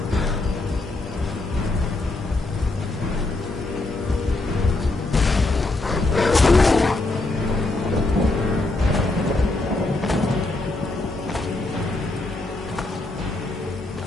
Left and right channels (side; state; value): right; quieter; 3.0 dB